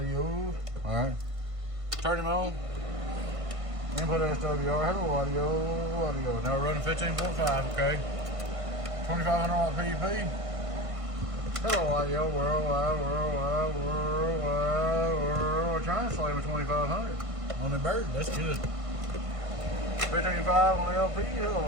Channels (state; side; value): late; left; 1.5 ms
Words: Alright. Turn him on. Input SWR. Hello, audio. Now we're running 15.5, okay? 2500 PDP. Hello, audio. Worldwide. Translate with 2500 on the bird. That's good. 15.5 on the LP. Hello,